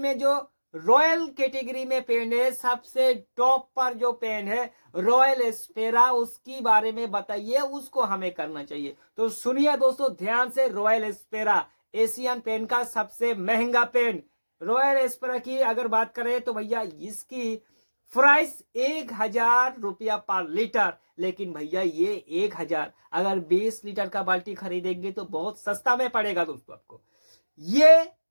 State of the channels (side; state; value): both; inverted; correlation -1.00